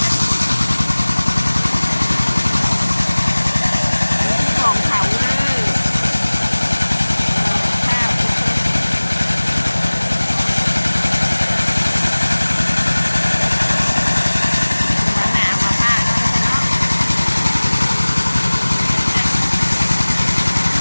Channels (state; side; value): inverted; both; correlation -1.00